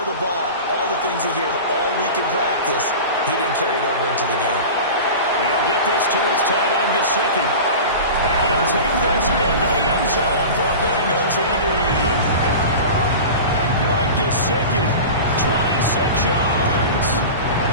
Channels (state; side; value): inverted; both; correlation -0.32